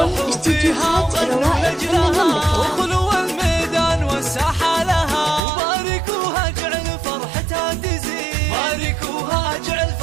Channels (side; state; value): left; drops out; at 5.4 s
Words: لاختياركم استديوهات روائع فن المملكة. وخلوا الميدان والساحة لها. وباركوها جعل فرحتها تزيد. باركوها جعل